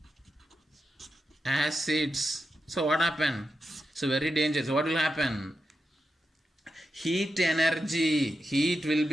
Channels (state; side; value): normal; both; correlation 0.88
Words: acids. So what happen? So very dangerous. What will happen? Heat will